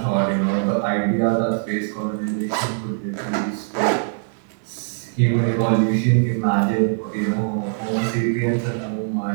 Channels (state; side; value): silent; left; digital silence